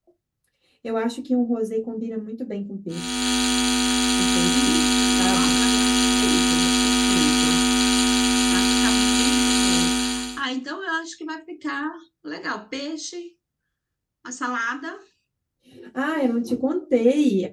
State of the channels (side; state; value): both; identical; correlation 1.00